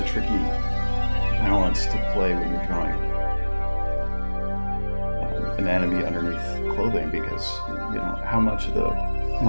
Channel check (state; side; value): inverted; both; correlation -1.00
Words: tricky balance to play when you're drawing anatomy underneath clothing, because how much of the